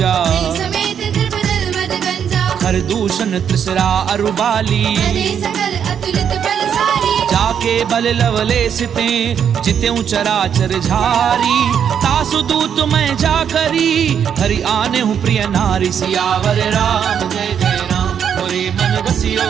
समेत द्रपदल मद गंजा हर दूषण त्रिसरा अरुबाली अरे सकल अतुलित बलशाली जाके बल लवले सिते जित्यों चराचर झारी तासु दूत मैं जा करी हरि आने हूँ प्रिय नारी सियावर राम जय जय राम मोरे मन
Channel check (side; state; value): left; quieter; 8.2 dB